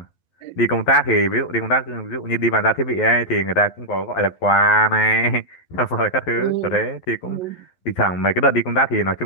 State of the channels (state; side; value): late; right; 11 ms